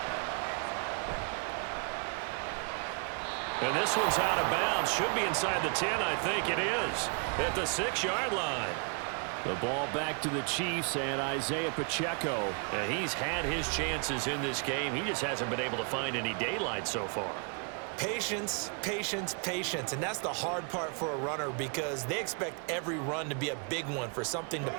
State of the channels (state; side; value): quieter; left; 38.2 dB